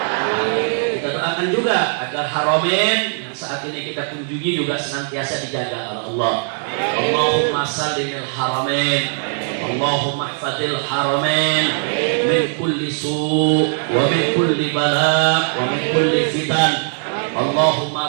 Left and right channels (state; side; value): silent; left; digital silence